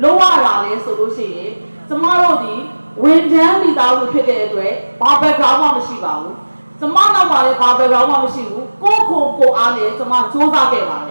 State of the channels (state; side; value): inverted; both; correlation -1.00